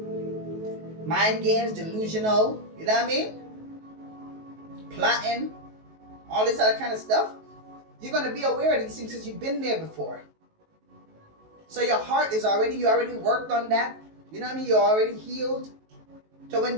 Mind games, delusional, you know what I mean? Plotting, all this other kind of stuff. You're going to be aware of these things because you've been there before. So your heart is you already worked on that. You know what I mean? You're already healed. So when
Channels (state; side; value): late; left; 19 ms